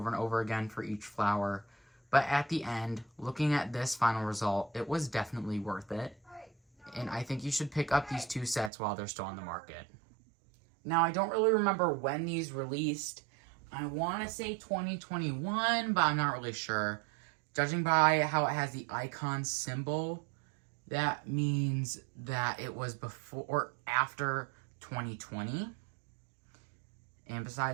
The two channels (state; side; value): drops out; left; at 8.7 s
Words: and over again for each flower. But at the end, looking at this final result, it was definitely worth it. And I think you should pick up these 2 sets while they're still on the market. Now, I don't really remember when these released. I want to say 2021, but I'm not really sure. Judging by how it has the icon symbol, that means that it was before or after 2020. And